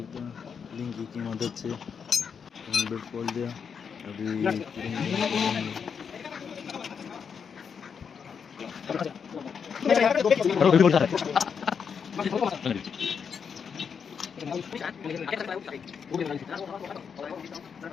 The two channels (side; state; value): right; quieter; 6.6 dB